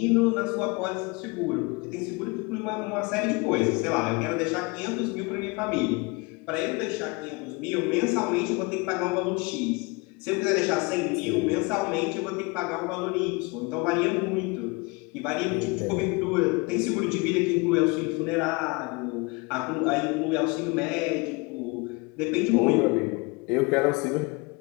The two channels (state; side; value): quieter; right; 27.5 dB